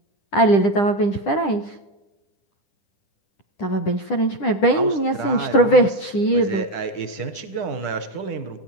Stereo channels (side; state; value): right; late; 10 ms